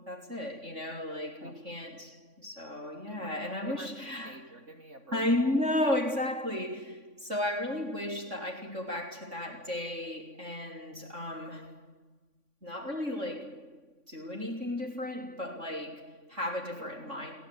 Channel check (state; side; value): late; left; 3.5 ms